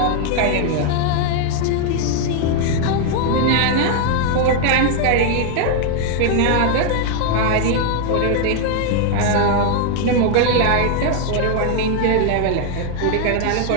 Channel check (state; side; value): different; both; correlation 0.00